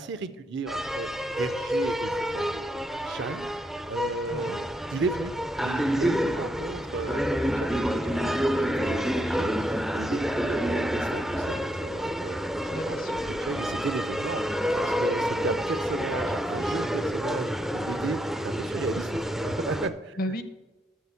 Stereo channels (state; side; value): normal; both; correlation 0.79